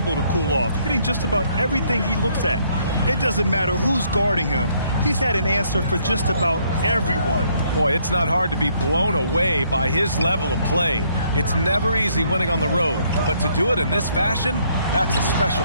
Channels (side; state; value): both; inverted; correlation -0.68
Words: to cool off, hitting just about everything he looks at. It doesn't matter who's guarding him. He's had an answer for just about everyone. Boy, it's not hard to be blown away by his level of play. It's never easy winning on the road, but to do it in this fashion, that's a special